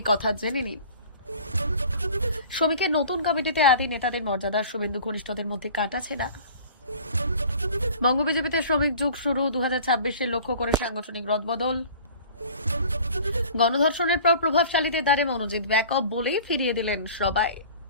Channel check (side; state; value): both; inverted; correlation -0.45